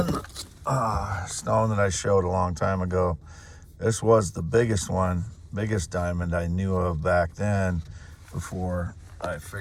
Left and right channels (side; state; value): both; identical; correlation 1.00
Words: stone that I showed a long time ago. This was the biggest diamond I knew of back then, before I